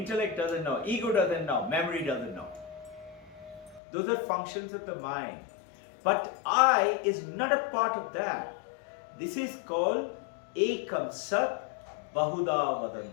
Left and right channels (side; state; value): right; drops out; at 3.8 s